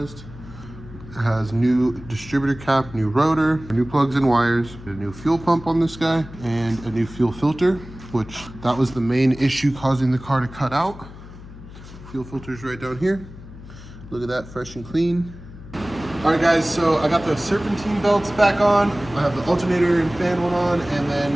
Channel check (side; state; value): left; noise; hum, 16 dB below the sound